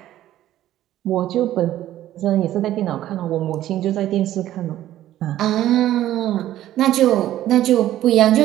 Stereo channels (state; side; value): quieter; left; 13.3 dB